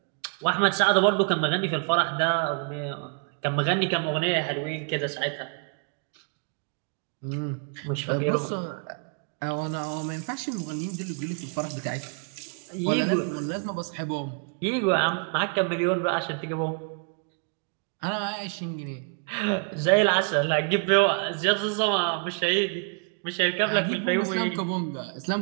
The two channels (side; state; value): left; quieter; 39.3 dB